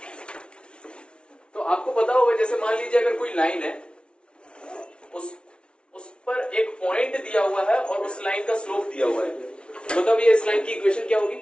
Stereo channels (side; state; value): right; late; 0.058 ms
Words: तो आपको पता होगा जैसे मान लीजिए अगर कोई लाइन है, उस पर एक पॉइंट दिया हुआ है और उस लाइन का स्लोप दिया हुआ है, मतलब ये इस लाइन की इक्वेशन क्या होगी?